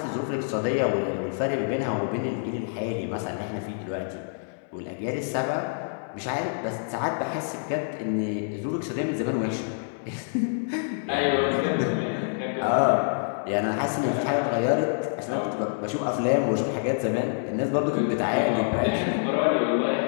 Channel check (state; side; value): silent; right; 60 dB below the other